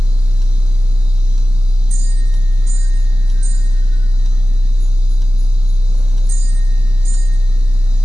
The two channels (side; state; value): both; normal; correlation 0.95